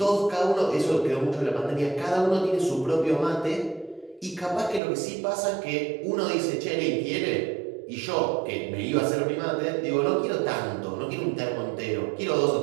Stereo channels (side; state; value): left; drops out; at 4.8 s